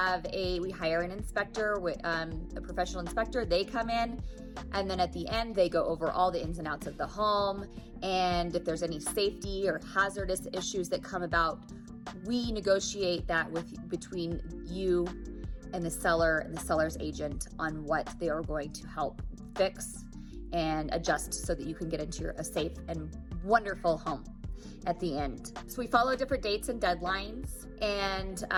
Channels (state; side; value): identical; both; correlation 1.00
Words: an inspector, a professional inspector. They come in, and then at the end, they go over all the ins and outs of the home. And if there's any safety or hazardous issues that come about, we negotiate that between you and the seller and the seller's agent on what they are going to help fix and adjust so that you can get into a safe and wonderful home at the end. So we follow different dates and deadlines, and